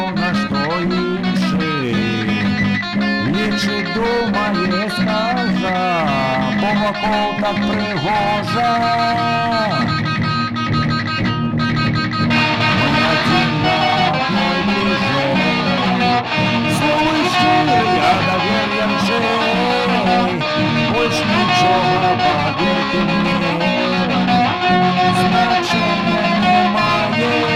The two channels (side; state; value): both; identical; correlation 1.00